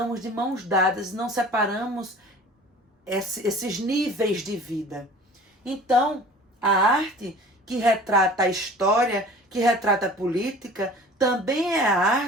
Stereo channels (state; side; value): normal; both; correlation 0.44